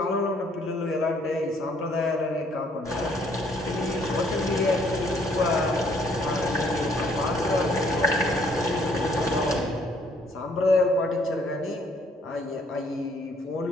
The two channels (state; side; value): normal; both; correlation 0.64